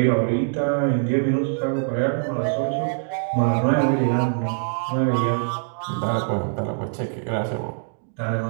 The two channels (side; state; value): left; silent; digital silence